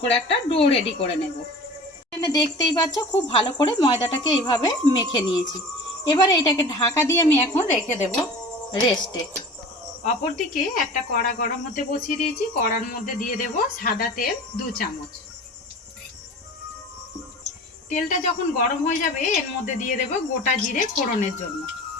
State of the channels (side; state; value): both; normal; correlation 0.39